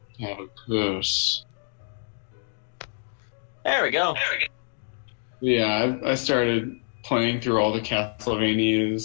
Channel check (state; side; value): silent; right; 61 dB below the other